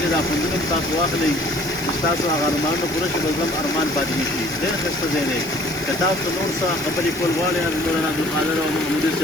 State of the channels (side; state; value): right; noise; hiss, 16 dB below the sound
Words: ځای دا خوندونه هم تاسو واخلئ چې ستاسو هغه ارمانونه پوره شي، بل هم ارمان پاتې نه شي. ډېر ښایسته ځای دی. که تاسو نور څه خبرې کول غواړئ حضرت مولانا عبدالقادر او محمودي